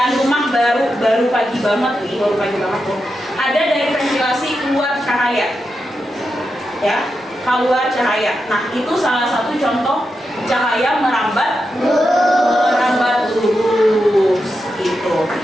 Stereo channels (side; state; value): both; normal; correlation 0.88